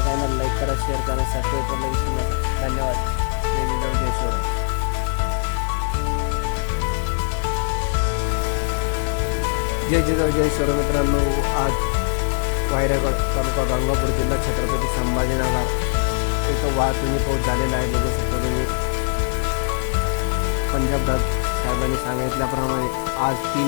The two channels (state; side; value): silent; right; digital silence